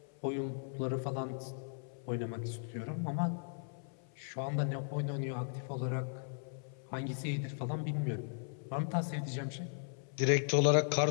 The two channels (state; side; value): silent; right; 53 dB below the other